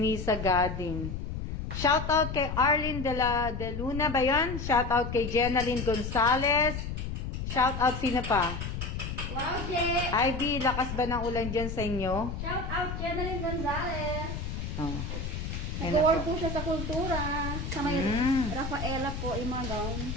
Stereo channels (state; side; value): noise; left; rumble, 5 dB below the sound